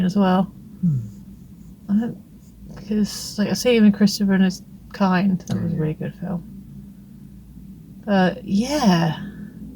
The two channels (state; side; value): identical; both; correlation 1.00